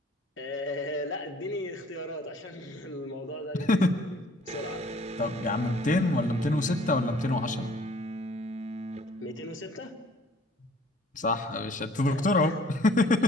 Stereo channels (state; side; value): normal; both; correlation 0.55